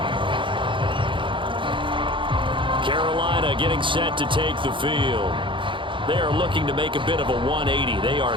Carolina getting set to take the field. They are looking to make a bit of a 180. They are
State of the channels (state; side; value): late; left; 0.24 ms